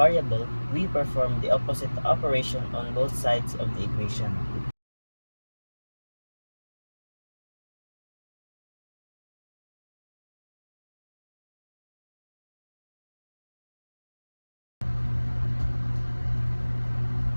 we perform the opposite operation on both sides of the equation.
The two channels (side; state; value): both; inverted; correlation -1.00